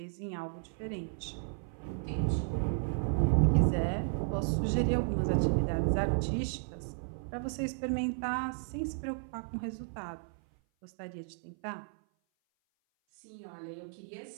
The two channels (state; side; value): silent; left; 55 dB below the other